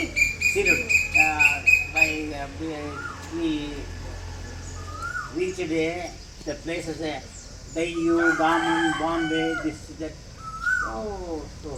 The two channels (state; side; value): identical; both; correlation 1.00